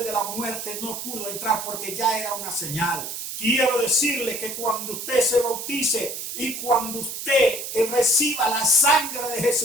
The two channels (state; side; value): noise; right; hiss, 7 dB below the sound